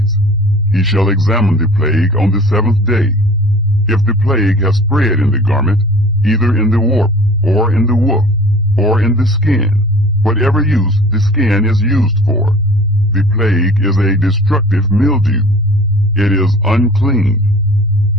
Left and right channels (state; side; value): normal; both; correlation 0.45